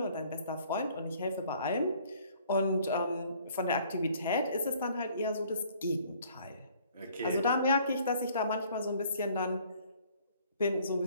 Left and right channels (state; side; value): inverted; both; correlation -0.58